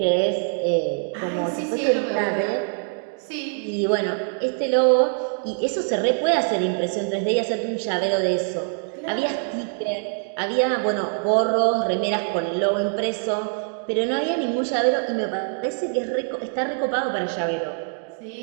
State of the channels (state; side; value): silent; left; 58 dB below the other